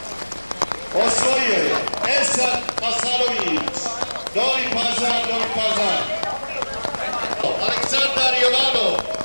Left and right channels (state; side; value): inverted; both; correlation -1.00